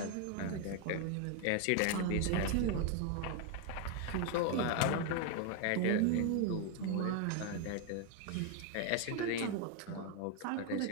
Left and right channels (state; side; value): different; both; correlation 0.01